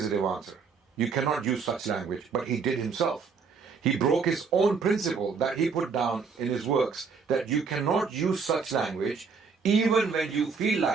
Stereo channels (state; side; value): quieter; left; 5.3 dB